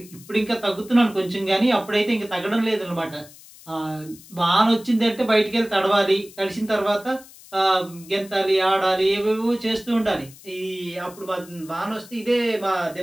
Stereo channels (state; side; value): noise; left; hiss, 21 dB below the sound